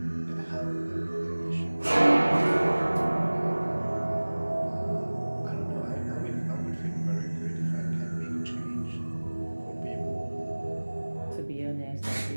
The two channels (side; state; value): both; inverted; correlation -1.00